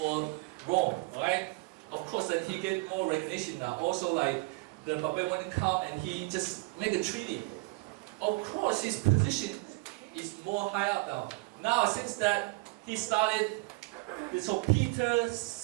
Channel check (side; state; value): left; quieter; 25.6 dB